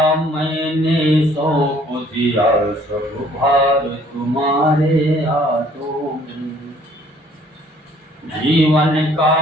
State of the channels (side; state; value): both; normal; correlation 0.59